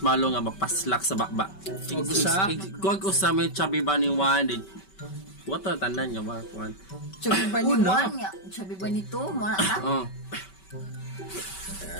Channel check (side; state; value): right; late; 5.2 ms